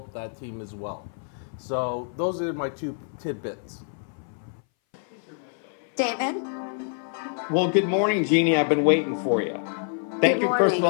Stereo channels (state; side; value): silent; right; 61 dB below the other